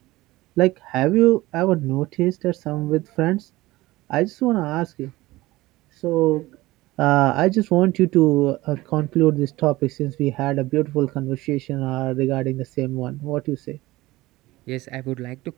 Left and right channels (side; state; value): left; quieter; 18.9 dB